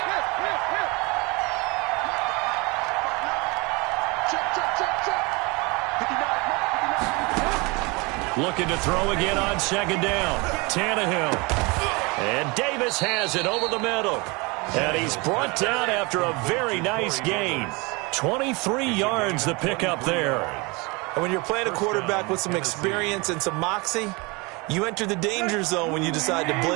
Looking to throw again on 2nd down. Tannehill. And Davis has it over the middle. And he's brought down after a very nice gain. 23 yards the pickup there. And when you're playing a quarterback with some experience and some moxie, you enter the danger zone when you decide to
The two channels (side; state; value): left; quieter; 27.0 dB